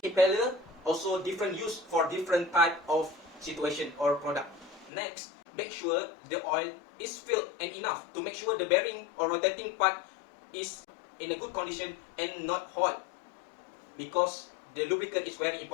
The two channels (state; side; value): drops out; right; at 4.9 s